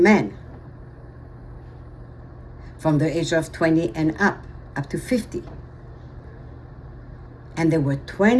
from the age of 20 and up to 50. And there were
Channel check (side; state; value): both; identical; correlation 1.00